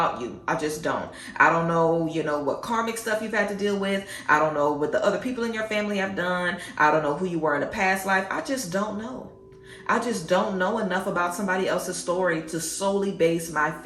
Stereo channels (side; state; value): both; identical; correlation 1.00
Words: you. I just don't. I don't know, what karmic stuff you've had to deal with. I don't know what the other people in your family have done. I don't know who you were in a past life. I just don't know. I just don't know enough about somebody else's story to solely base my